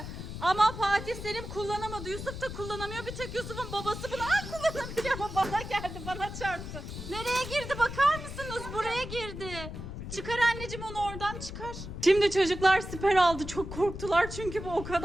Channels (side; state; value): left; noise; rumble, 9 dB below the sound